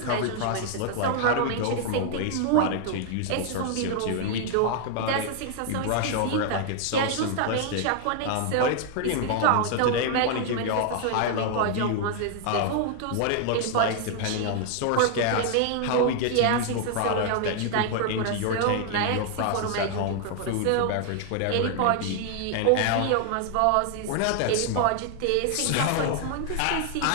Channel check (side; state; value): both; different; correlation 0.00